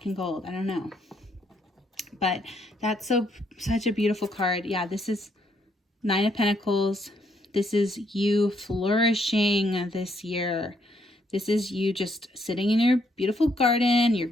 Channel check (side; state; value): both; normal; correlation 0.72